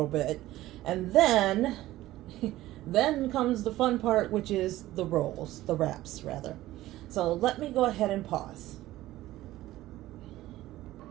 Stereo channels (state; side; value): quieter; left; 15.8 dB